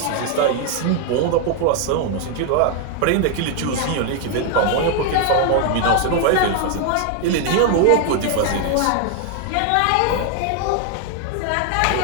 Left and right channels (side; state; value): both; different; correlation 0.00